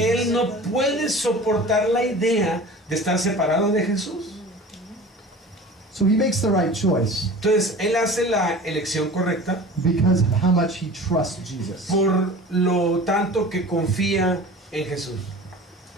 él no puede soportar la idea de estar separado de Jesús. So he makes the right choice Entonces él hace la elección correcta because of how much he trusts Jesus. por lo tanto que confía en Jesús.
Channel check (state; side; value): normal; both; correlation 0.39